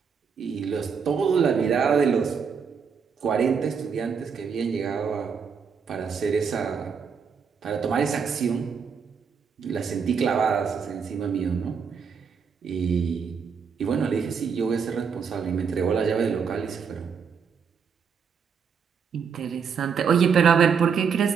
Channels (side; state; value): left; quieter; 6.4 dB